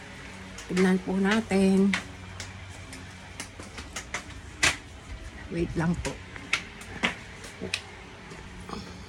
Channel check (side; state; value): both; identical; correlation 1.00